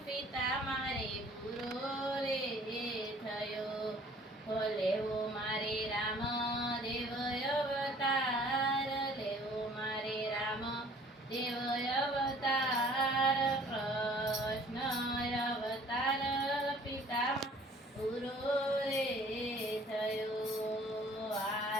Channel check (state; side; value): normal; both; correlation 0.54